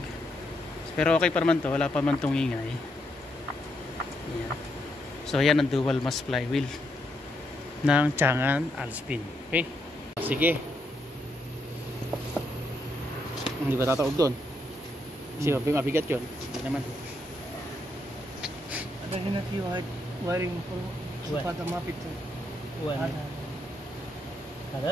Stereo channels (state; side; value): normal; both; correlation 0.78